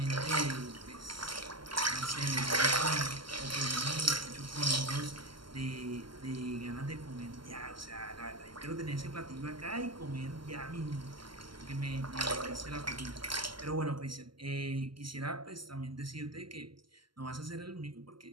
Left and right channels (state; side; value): late; left; 0.73 ms